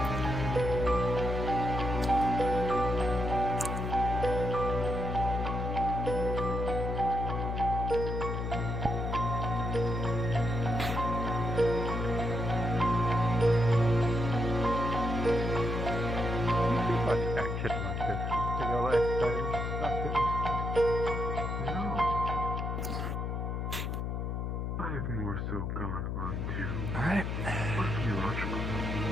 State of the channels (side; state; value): left; noise; hum, 2 dB below the sound